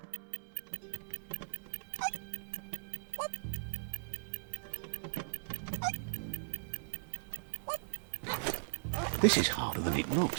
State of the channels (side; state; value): left; silent; 52 dB below the other